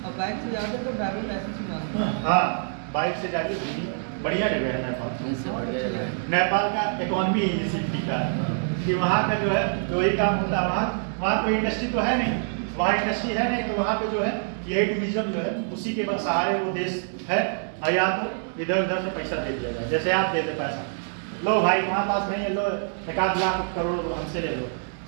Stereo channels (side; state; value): left; silent; 61 dB below the other